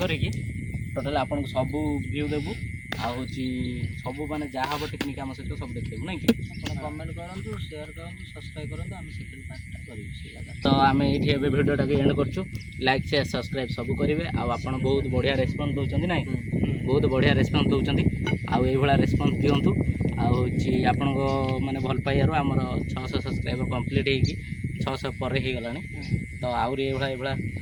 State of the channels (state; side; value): identical; both; correlation 1.00